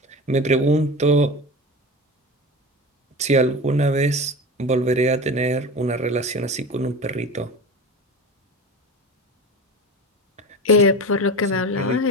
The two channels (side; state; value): both; normal; correlation 0.29